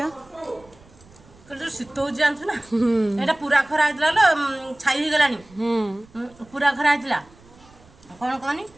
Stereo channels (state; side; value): noise; right; rumble, 26 dB below the sound